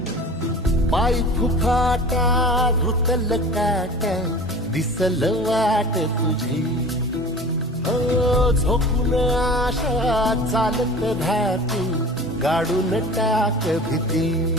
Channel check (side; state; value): both; normal; correlation 0.39